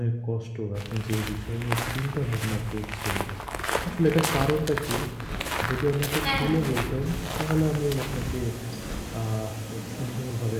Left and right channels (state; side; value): identical; both; correlation 1.00